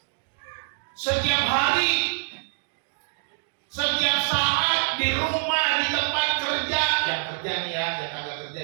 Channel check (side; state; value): left; silent; digital silence